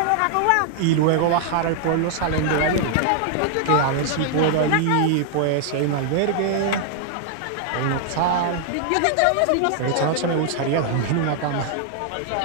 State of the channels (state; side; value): different; both; correlation 0.00